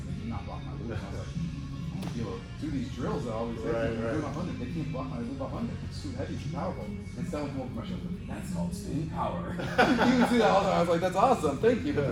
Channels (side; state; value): both; identical; correlation 1.00